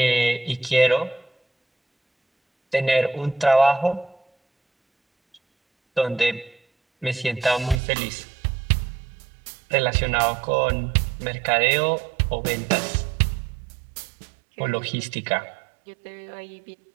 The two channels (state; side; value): drops out; left; at 7.8 s